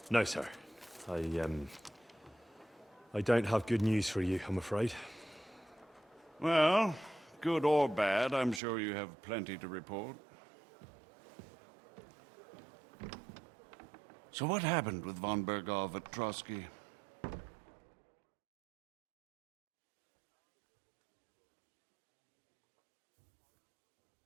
No, sir. I don't have good news for you, I'm afraid. Well, good or bad, I'm sure you have plenty to report. So what happened with von Bergov at Trotsky?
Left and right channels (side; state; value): left; drops out; at 8.6 s